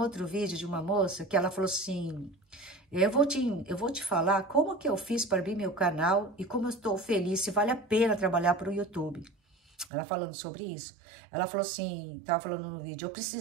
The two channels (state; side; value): drops out; left; at 9.9 s